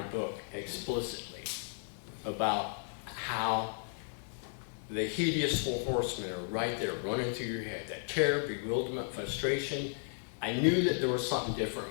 book explicitly, about how the hideous four horsemen are right there running through your head, that terror, bewilderment, frustration. I knew that there was something different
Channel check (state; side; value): silent; right; 55 dB below the other